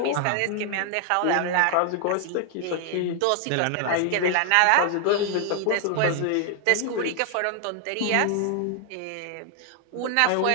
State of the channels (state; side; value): different; both; correlation 0.00